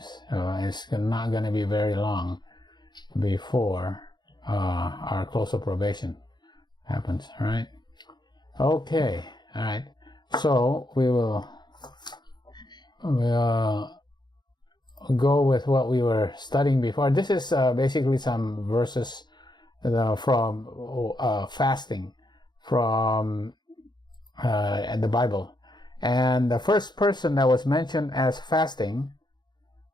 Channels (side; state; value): right; late; 0.21 ms